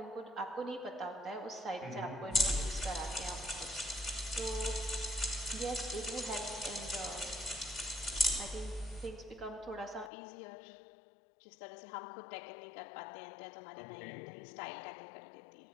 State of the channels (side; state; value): right; drops out; at 10.1 s